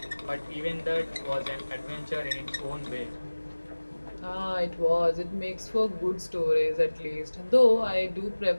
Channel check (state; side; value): inverted; both; correlation -1.00